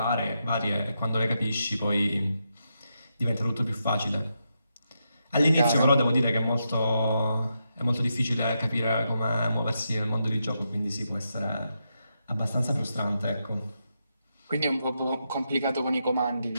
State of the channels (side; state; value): both; inverted; correlation -0.84